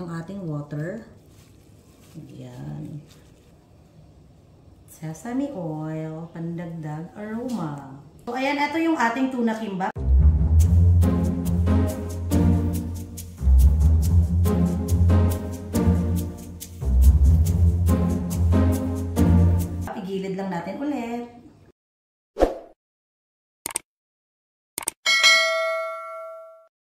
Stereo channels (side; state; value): both; identical; correlation 1.00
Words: ating water. Ayan. Sesame oil, pandagdag aroma. So, ayan, ito yung ating tuna kimbap. lang natin ulit.